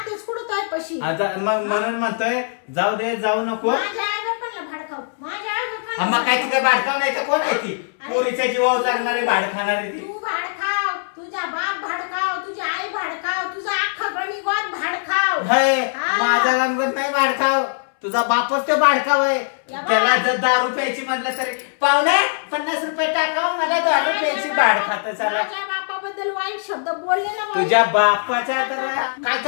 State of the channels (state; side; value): silent; right; 65 dB below the other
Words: कुठं तोय पशी. आता मग म्हणून म्हणतोय जाऊ दे, जाऊ नको. माझ्या आई बापांना भडकाव, माझ्या आई बापांना मग काय ती काय भाडकाव नाही का. कोण आहे ती पोरीच्या जीवावर जगणारी भाड खाणारी ती. तू भाडखाव, तुझा बाप भाडखाव, तुझी आई भाडखाव, तुझा अख्खा गणिगोत भाडखाव. हे हा. माझा गणपत नाही भाडखाव, तुझा बापच तो भाडखाव आहे. या बा. त्याला जर 10 रुपयाची म्हटलं तरी पाहुणे 50 रुपये टाकाव, मला 10 रुपयाची भाड खात चाला. माझ्या बापाबद्दल वाईट शब्द बोलले ना बाई. तुझ्या बापाच्या तर काय